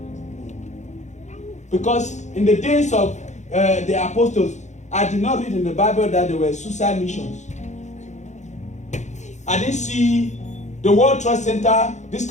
Because in the days of the apostles, I did not read in the Bible that there were suicide missions. I didn't see the World Trade Center, this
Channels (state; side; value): late; right; 0.34 ms